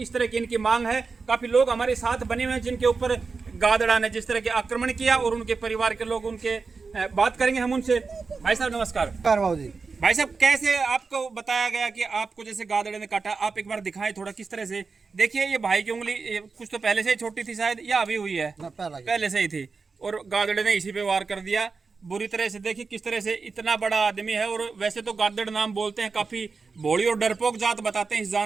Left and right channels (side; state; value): left; quieter; 4.6 dB